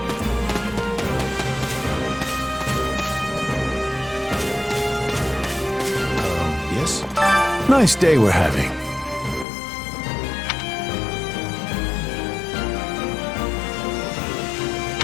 Yes? Nice day we're having.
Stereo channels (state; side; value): drops out; right; at 9.5 s